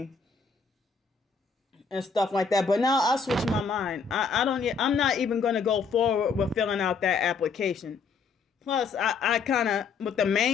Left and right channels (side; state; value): right; quieter; 5.3 dB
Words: and stuff like that. But now I switched my mind. I'm not even going to go forward with filling out that application. Plus, I kind of, with the